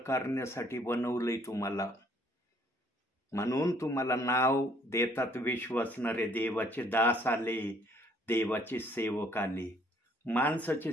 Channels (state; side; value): normal; both; correlation 0.62